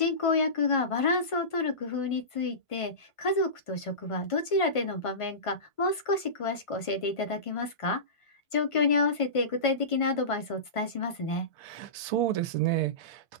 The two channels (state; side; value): late; right; 1.5 ms